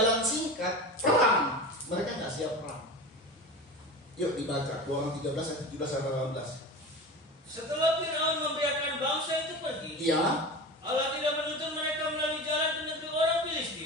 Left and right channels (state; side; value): normal; both; correlation 0.30